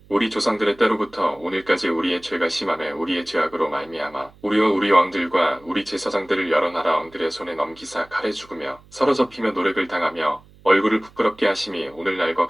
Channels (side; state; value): right; noise; hum, 26 dB below the sound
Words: 우리 조상들의 때로부터 오늘까지 우리의 죄가 심함에 우리의 죄악으로 말미암아 우리와 우리 왕들과 우리 제사장들을 여러 나라 왕들의 손에 넘기사 칼에 죽으며 사로잡히며 노력을 당하며 얼굴을 부끄럽게 하심이 오늘날과